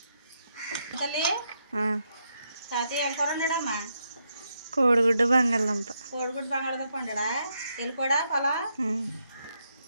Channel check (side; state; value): both; inverted; correlation -0.80